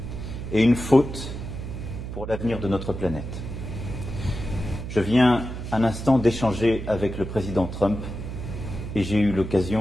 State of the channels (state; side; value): noise; right; hum, 7 dB below the sound